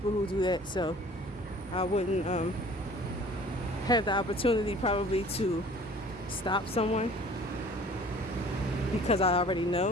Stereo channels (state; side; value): normal; both; correlation 0.49